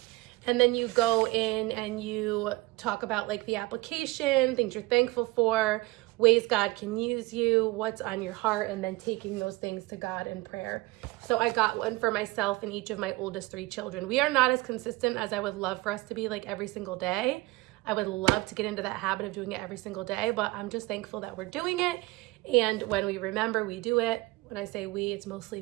And then you go in and you talk about like the application, things you're thankful for, ways God can use you, what's on your heart, and then taking those things to God in prayer. So I got one for myself and each of my oldest 3 children. We are not as consistent as I would love for us to be like every single day. I would love to get into that habit of doing it every single day, but I'm just thankful that we're doing it. And when we remember, we do it. When I say we, it's mostly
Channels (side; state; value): left; quieter; 20.9 dB